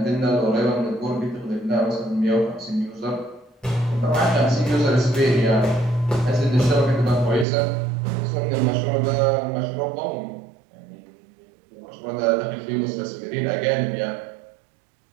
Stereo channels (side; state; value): left; drops out; at 7.5 s